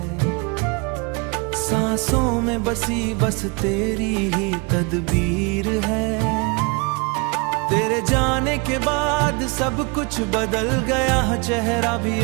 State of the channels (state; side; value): quieter; left; 29.9 dB